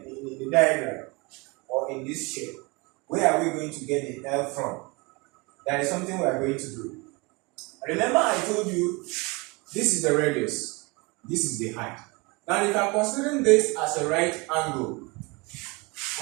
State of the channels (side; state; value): left; quieter; 27.1 dB